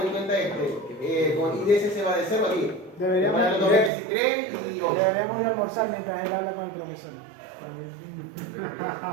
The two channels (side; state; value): left; drops out; at 3.9 s